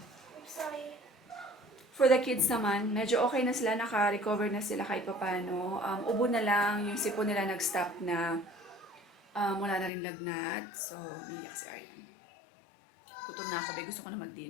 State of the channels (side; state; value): right; drops out; at 9.9 s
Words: sorry. for the kids naman, medyo okay na sila, naka-recover na sila kahit paano. Ubo na lang, yung sipon nila nag-stop na, wala na rin lagnat. So, biyak si Aryan. Gutom na ako, gusto ko na